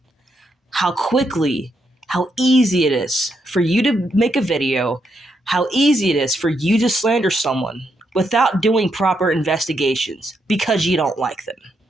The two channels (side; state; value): both; normal; correlation 0.80